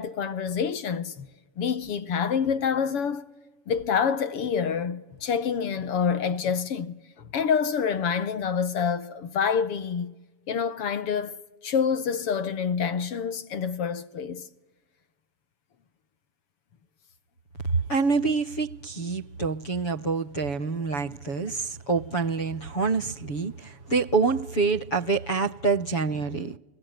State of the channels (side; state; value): right; late; 7.1 ms